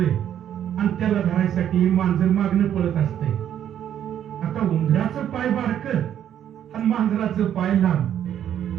आणि त्याला धरायसाठी मांजर मागणं पळत असतंय. आता उंदराचं पाय बारकं आणि मांजराचं पाय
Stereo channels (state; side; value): quieter; left; 10.1 dB